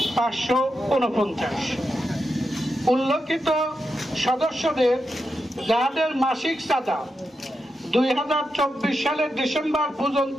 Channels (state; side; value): normal; both; correlation 0.87